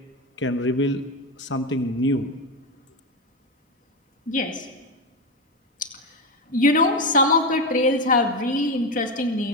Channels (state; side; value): normal; both; correlation 0.14